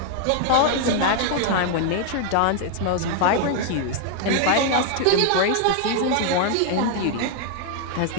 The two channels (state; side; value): different; both; correlation 0.00